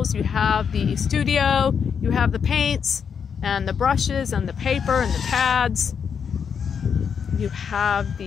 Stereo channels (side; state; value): right; quieter; 6.9 dB